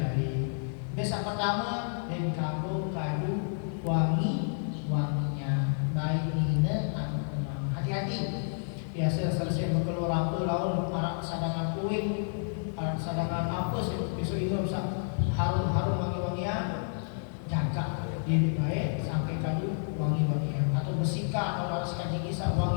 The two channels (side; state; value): right; silent; digital silence